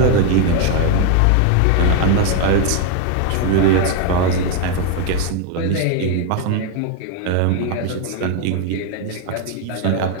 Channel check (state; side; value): different; both; correlation 0.01